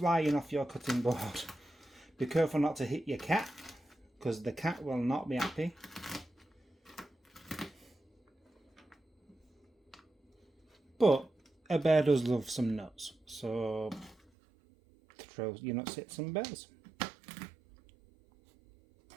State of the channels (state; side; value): drops out; left; at 14.2 s